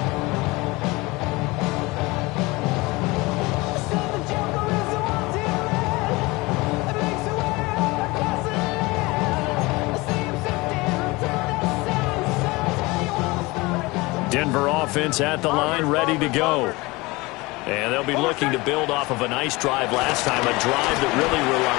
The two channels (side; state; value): right; quieter; 23.0 dB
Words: Denver offense at the line, ready to go. And they'll be looking to build off of a nice drive last time, a drive that really